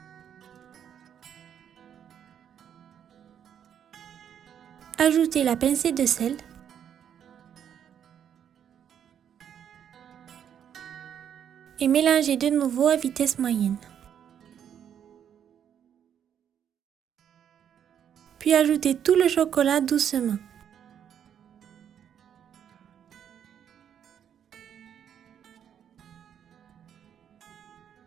Ajoutez la pincée de sel. Et mélangez de nouveau à vitesse moyenne. Puis ajoutez tout le chocolat doucement.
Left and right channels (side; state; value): left; quieter; 9.0 dB